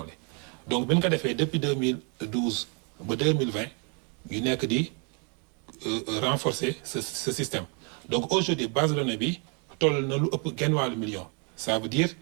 donc bi ñu ko defee depuis 2012 ba 2020 ñu nekk di renforcer ce système donc aujourd'hui base de données bi toll na lu ëpp genn wàllu million. ça veut dire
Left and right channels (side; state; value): left; quieter; 37.4 dB